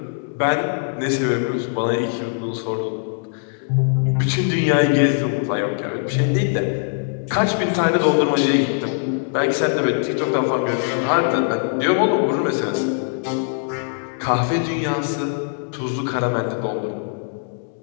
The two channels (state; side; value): silent; right; digital silence